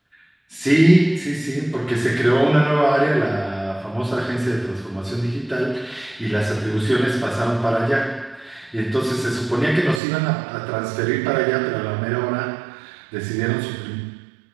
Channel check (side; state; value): left; drops out; at 10.0 s